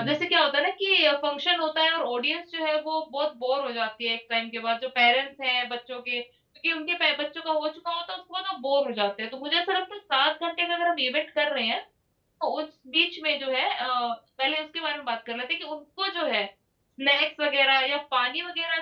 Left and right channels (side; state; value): both; identical; correlation 1.00